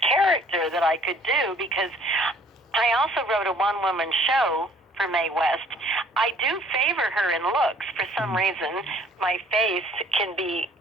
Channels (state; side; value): normal; both; correlation 0.57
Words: character that I could do, because I also wrote a one-woman show for Mae West. I do favor her in looks. For some reason, my face can be,